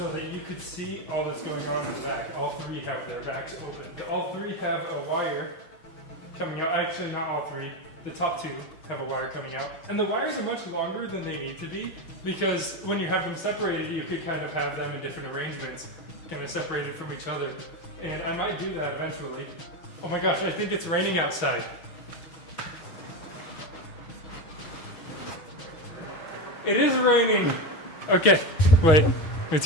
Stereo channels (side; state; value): right; late; 6.3 ms